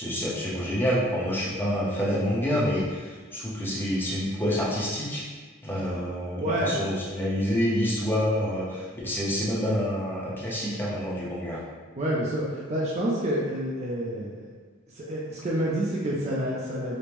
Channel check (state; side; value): normal; both; correlation 0.56